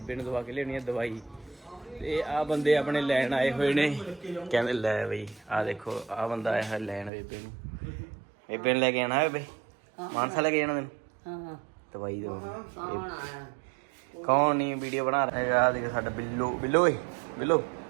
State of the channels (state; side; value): drops out; left; at 7.1 s